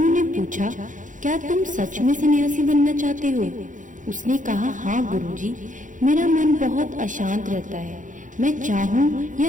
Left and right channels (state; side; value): late; left; 0.37 ms